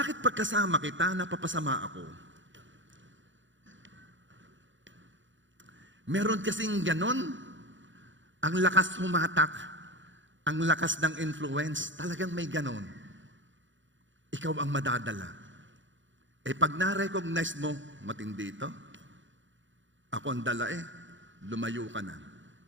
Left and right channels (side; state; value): left; late; 0.55 ms